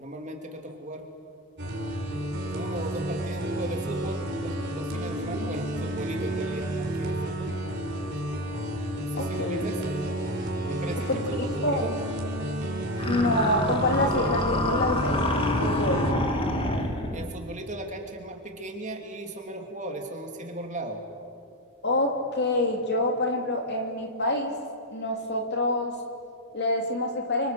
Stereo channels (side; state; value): both; normal; correlation 0.15